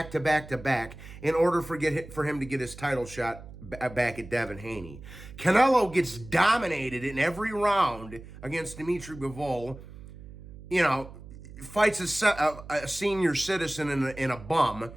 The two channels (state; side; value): noise; right; hum, 16 dB below the sound